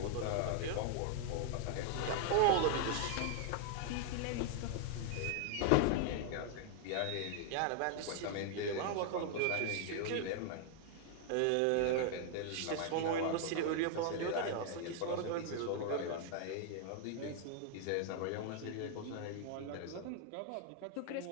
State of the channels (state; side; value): different; both; correlation 0.00